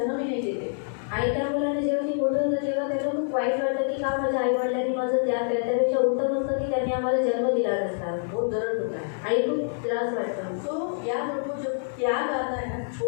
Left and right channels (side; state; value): right; silent; digital silence